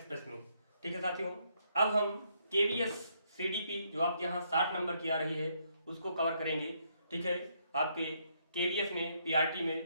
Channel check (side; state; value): both; inverted; correlation -0.73